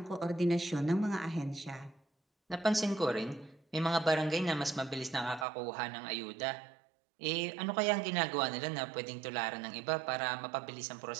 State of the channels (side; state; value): left; drops out; at 5.5 s